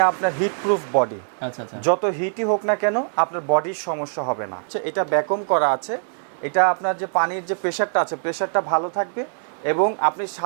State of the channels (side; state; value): left; silent; digital silence